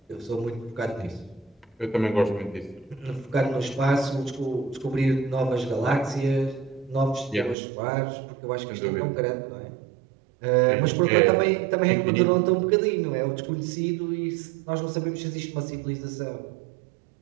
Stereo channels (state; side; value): drops out; left; at 7.6 s